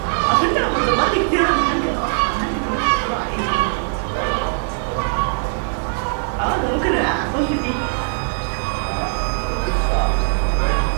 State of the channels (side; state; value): left; silent; digital silence